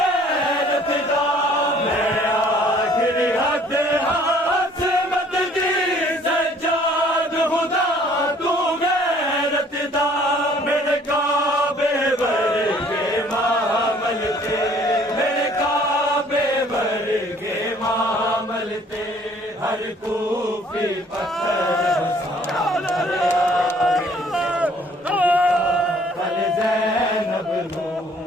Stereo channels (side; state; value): both; normal; correlation 0.58